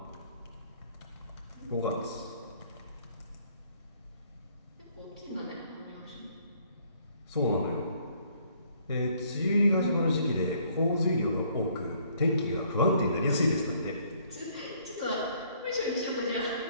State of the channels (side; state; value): both; inverted; correlation -0.63